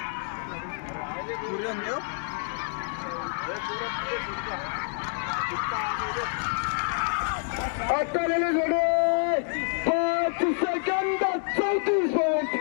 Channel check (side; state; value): right; silent; 60 dB below the other